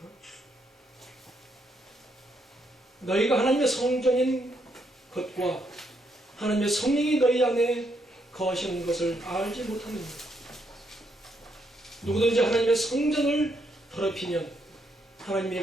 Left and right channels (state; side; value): normal; both; correlation 0.76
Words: 너희가 하나님의 성전인 것과 하나님의 성령이 너희 안에 거하시는 것을 알지 못하느냐. 누구든지 하나님의 성전을 더럽히면 하나님의